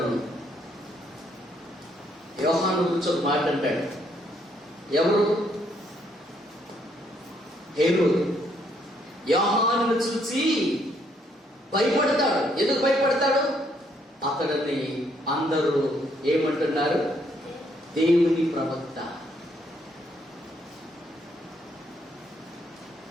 యోహాను గురించి ఒక మాట అంటాడు. ఎవరు? హేరోదు యోహానును చూసి భయపడతాడు. ఎందుకు భయపడతాడు? అతడిని అందరూ ఏమంటున్నారు? దేవుని ప్రవక్త.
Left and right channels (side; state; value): both; normal; correlation 0.71